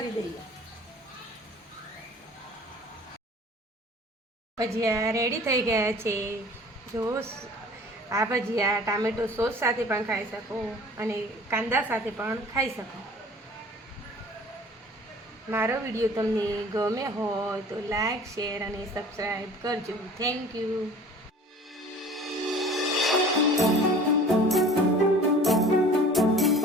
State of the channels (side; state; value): both; normal; correlation 0.46